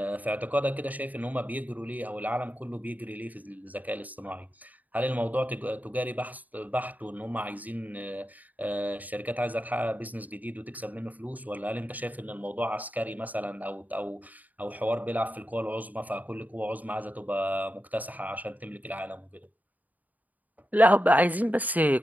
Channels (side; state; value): left; late; 0.078 ms